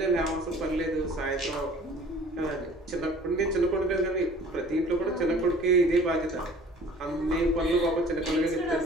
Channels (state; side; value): normal; both; correlation 0.49